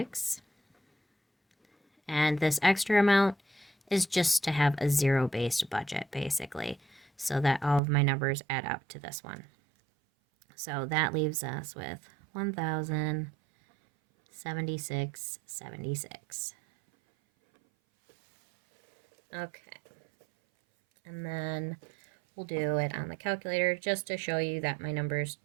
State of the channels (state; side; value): drops out; left; at 7.8 s